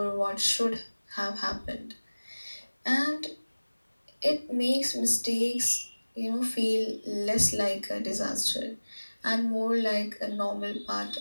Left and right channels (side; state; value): both; inverted; correlation -1.00